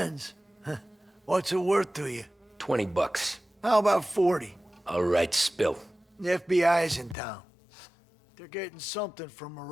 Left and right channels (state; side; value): drops out; right; at 7.2 s